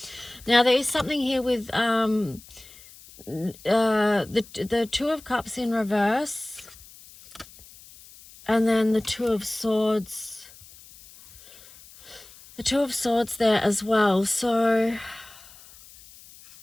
Now there is something here with the Two of Cups in reverse, and then the Two of Swords. The Two of Swords there as well. So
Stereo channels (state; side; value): noise; left; hiss, 21 dB below the sound